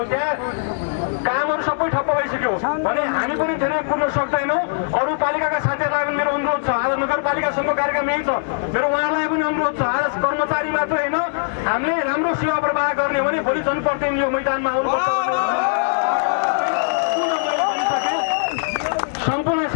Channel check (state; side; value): silent; right; digital silence